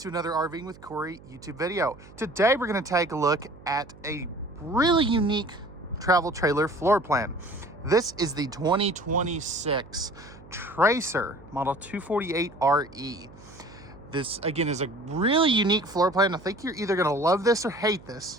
another RVing with Corey YouTube video. Today, we're going to take a look at a really unique travel trailer floor plan. This is the 2026 Tracer Model 248RE. This, again, is a really unique floor plan. I think you're either going to love this or hate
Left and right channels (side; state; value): right; noise; hum, 21 dB below the sound